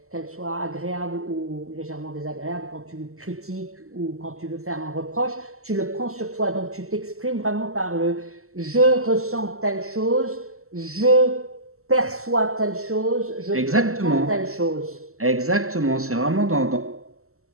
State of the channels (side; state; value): left; late; 0.63 ms